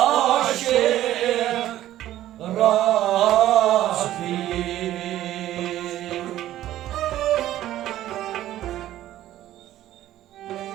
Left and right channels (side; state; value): left; quieter; 13.5 dB